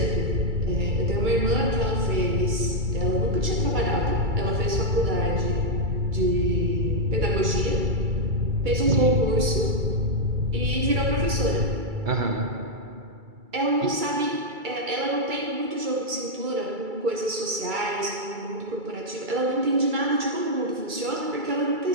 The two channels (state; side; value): late; left; 2.3 ms